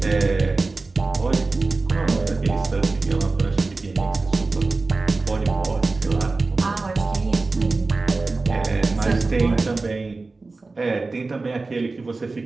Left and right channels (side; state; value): left; quieter; 3.6 dB